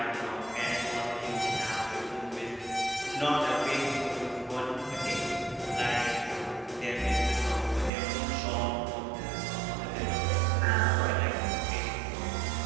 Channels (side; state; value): left; drops out; at 7.9 s